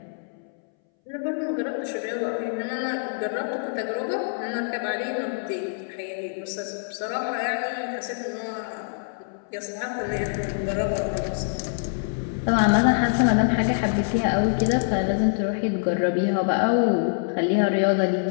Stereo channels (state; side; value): silent; right; 62 dB below the other